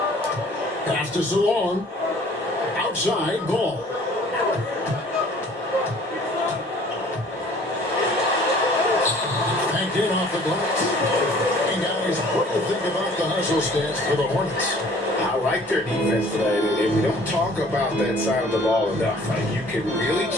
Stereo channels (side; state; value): both; normal; correlation 0.52